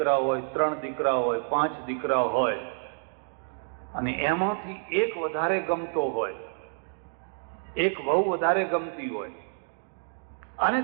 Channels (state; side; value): silent; left; digital silence